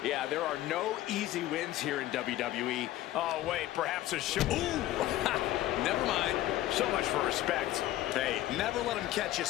Yeah, there are no easy wins here in WWE. Oh, wait, perhaps a show. Ooh, never mind. So much for respect. Hey, never let him catch you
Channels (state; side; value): quieter; right; 14.8 dB